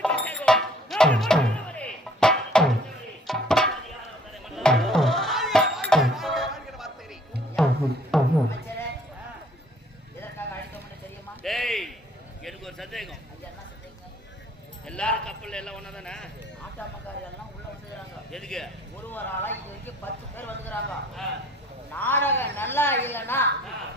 அமைச்சரே, எதற்காக அழைத்தோம்னு தெரியுமா? டேய், எனக்கு ஒரு சந்தேகம். ஐயா, என்ன சொல்றீங்க? எல்லாரும் கப்பல்ல எல்லாம் ஒண்ணா தானே? ஆட்டாமக்காரி எல்லாம் உள்ள வந்துக்கிறாங்க. எதுக்கு? ஒரு ஆளா இது வரைக்கும் 10 பேர் வந்துக்கிறாங்க. ஆ, நாடகம் நல்லா இல்லைன்னா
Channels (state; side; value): normal; both; correlation 0.57